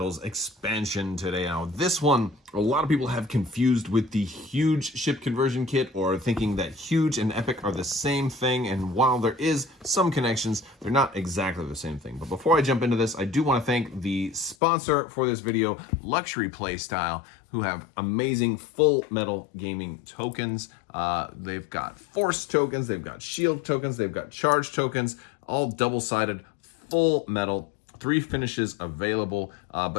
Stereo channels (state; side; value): drops out; right; at 14.6 s